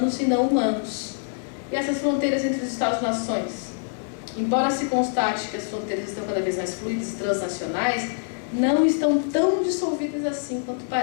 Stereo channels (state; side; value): silent; right; digital silence